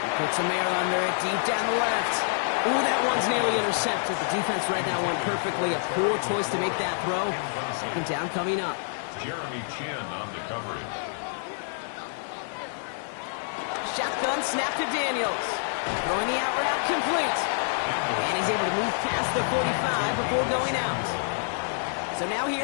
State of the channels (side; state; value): right; silent; digital silence